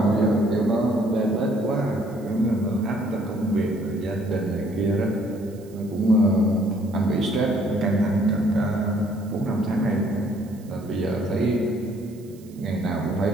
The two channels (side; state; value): right; noise; hiss, 27 dB below the sound